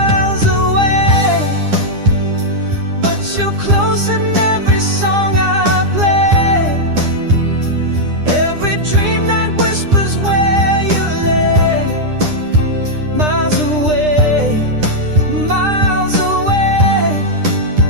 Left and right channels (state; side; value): late; left; 9.9 ms